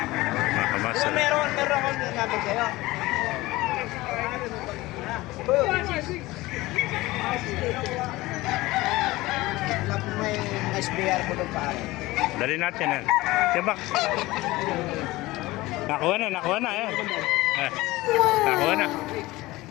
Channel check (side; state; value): right; quieter; 19.5 dB